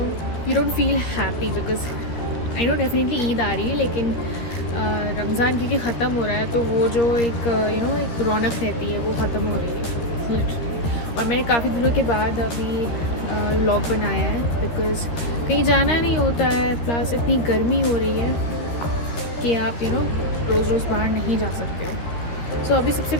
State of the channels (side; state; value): right; late; 13 ms